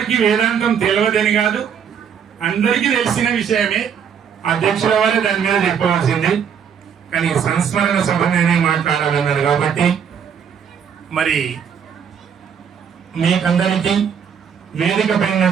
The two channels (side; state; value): left; quieter; 7.6 dB